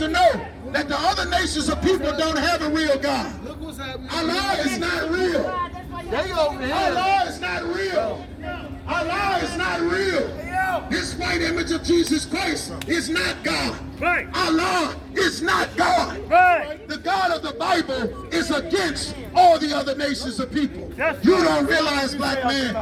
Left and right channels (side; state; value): both; identical; correlation 1.00